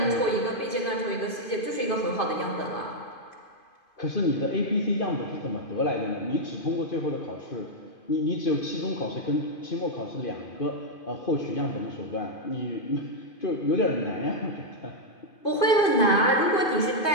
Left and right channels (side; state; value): right; late; 2.5 ms